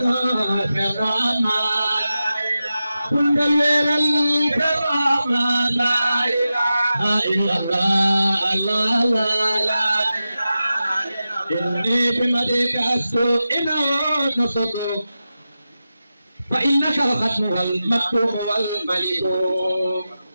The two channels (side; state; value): both; inverted; correlation -0.92